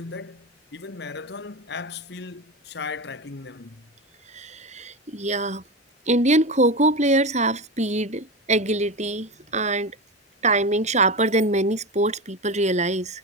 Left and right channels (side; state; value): both; normal; correlation 0.21